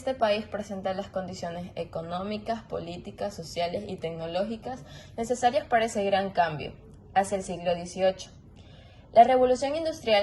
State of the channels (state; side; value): identical; both; correlation 1.00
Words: país presenta las condiciones económicas, políticas, sociales y tecnológicas necesarias para ese gran cambio hacia el siglo XVIII. La revolución